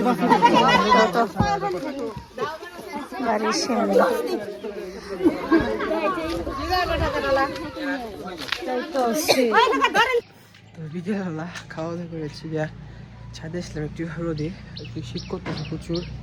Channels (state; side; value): identical; both; correlation 1.00